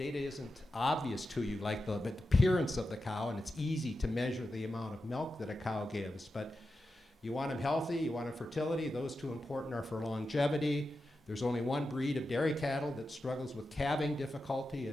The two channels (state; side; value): normal; both; correlation 0.90